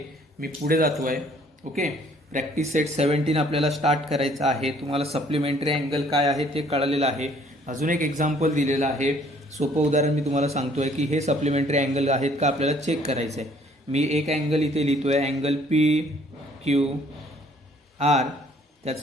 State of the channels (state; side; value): normal; both; correlation 0.60